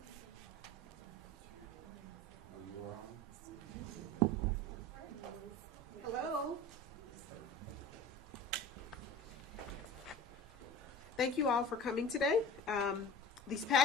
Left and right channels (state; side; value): normal; both; correlation 0.36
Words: Oh, you are on? Hello. Thank you all for coming today. These